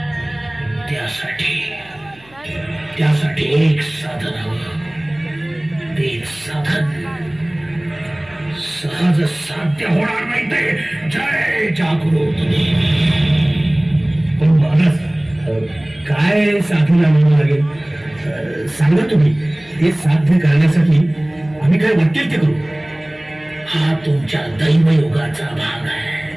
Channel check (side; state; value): right; noise; hum, 27 dB below the sound